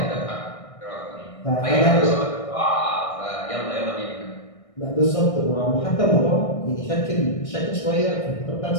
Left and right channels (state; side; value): late; right; 1.6 ms